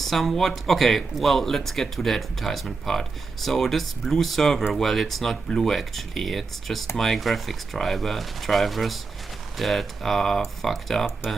Okay, well, let's get to the advertisement part. So this blue server, well, it's not blue actually. It's just my graphics drivers that are fucked up,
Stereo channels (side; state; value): left; quieter; 4.3 dB